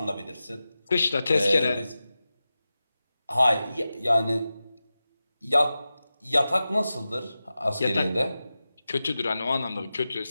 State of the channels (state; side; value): inverted; both; correlation -0.94